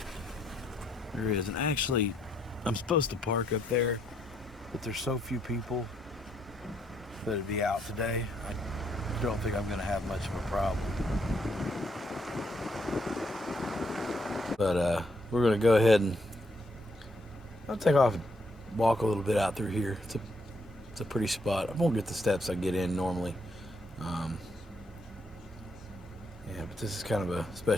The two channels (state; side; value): normal; both; correlation 0.73